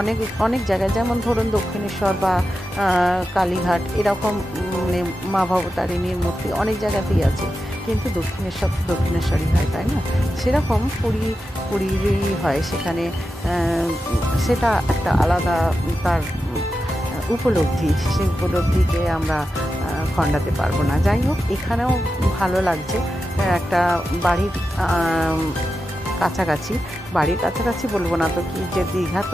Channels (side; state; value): both; normal; correlation 0.90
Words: অনেক জায়গায়, যেমন ধরুন দক্ষিণেশ্বর বা কালীঘাট, এরকম মানে মা ভবতারিণীর মূর্তি অনেক জায়গাতেই আছে, কিন্তু দক্ষিণেশ্বরই হয়, তাই না? সেরকম পুরীরই হয় সেখানে, সেটা একটা আলাদা তার উপলব্ধি, সেই উপলব্ধিকে আমরা খণ্ডাতে পারবো না। যাই হোক, এখানেও ভালো লাগছে, একটা বাড়ির কাছাকাছি বলবো না তো কি, যে দীঘা